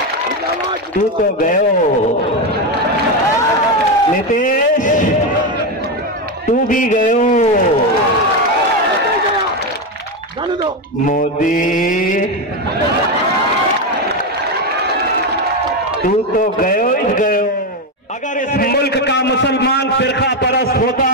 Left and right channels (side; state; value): both; normal; correlation 0.11